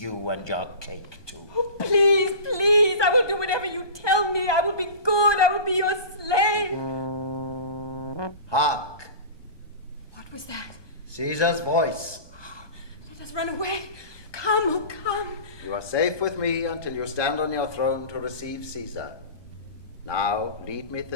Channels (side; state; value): right; late; 1.2 ms